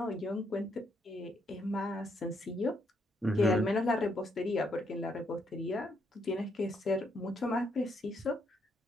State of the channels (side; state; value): both; normal; correlation 0.75